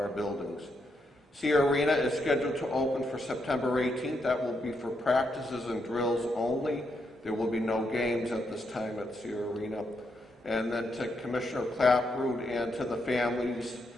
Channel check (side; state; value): both; normal; correlation 0.80